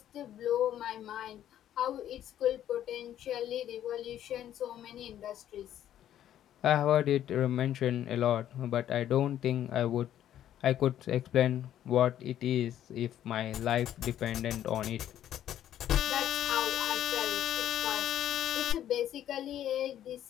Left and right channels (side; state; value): right; quieter; 11.3 dB